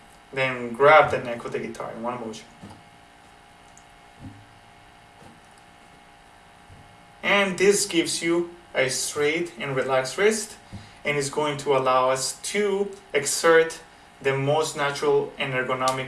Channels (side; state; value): both; identical; correlation 1.00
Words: Then grab the neck of the guitar in one motion. And this gives you a straight and relaxed wrist, and is going to allow us to exert the most natural and